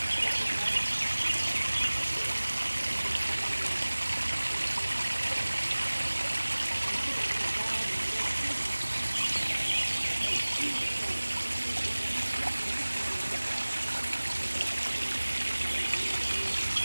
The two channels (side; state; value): both; inverted; correlation -1.00